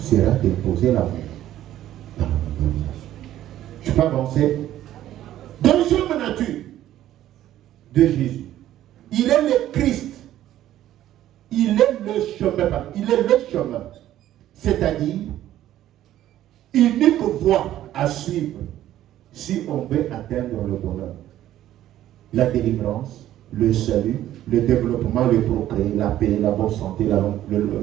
d'imposer l'amour dans la mondialisation. Je peux avancer. Deuxième nature de Jésus. Il est le Christ. Il est le chemin. Il est le chemin. C'est-à-dire, unique voie à suivre si on veut atteindre le bonheur. La délivrance, le salut, le développement, le progrès, la paix, la bonne santé, une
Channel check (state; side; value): quieter; left; 12.9 dB